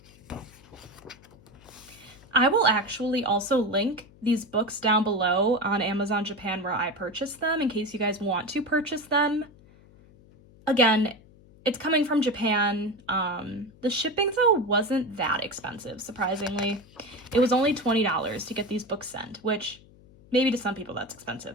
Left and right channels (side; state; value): left; noise; hum, 25 dB below the sound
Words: I will actually also link these books down below on Amazon Japan where I purchased them in case you guys want to purchase them. Again, it's coming from Japan. The shipping though wasn't that expensive, surprisingly. It was only $20 to get these books sent, which maybe to some people that's